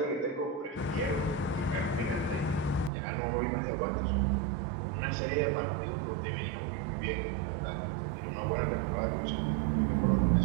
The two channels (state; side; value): drops out; left; at 2.9 s